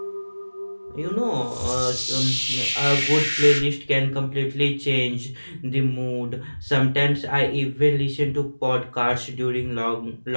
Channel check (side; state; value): both; inverted; correlation -1.00